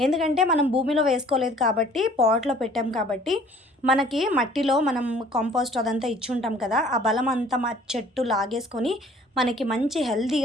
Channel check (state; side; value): normal; both; correlation 0.53